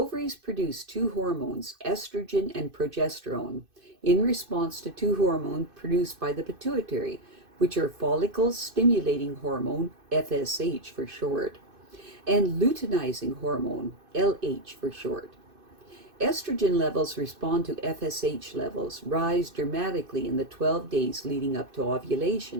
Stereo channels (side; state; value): left; late; 2.6 ms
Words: produce 2 hormones, estrogen and progesterone, in response to 2 hormones produced by the pituitary, which are follicle-stimulating hormone, FSH for short, and luteinizing hormone, LH for short. Estrogen levels respond to FSH levels, rise dramatically in the 12 days leading up to